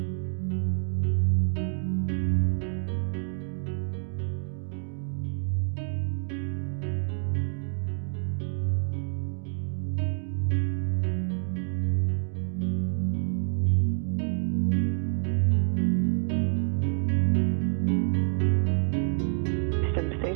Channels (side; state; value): left; silent; digital silence